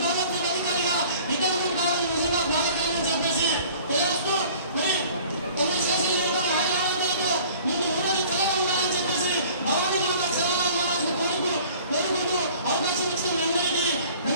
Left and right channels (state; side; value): inverted; both; correlation -0.49